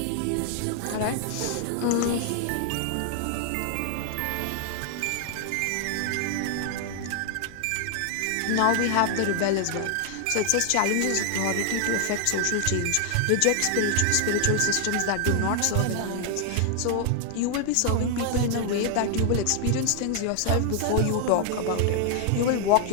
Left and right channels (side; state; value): both; different; correlation 0.00